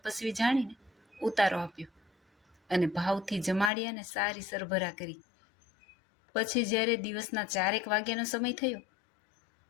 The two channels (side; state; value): right; drops out; at 3.7 s